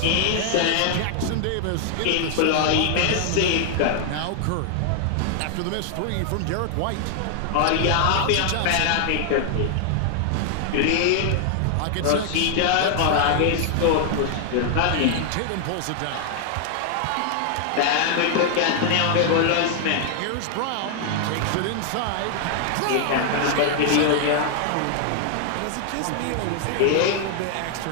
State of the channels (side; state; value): both; different; correlation 0.00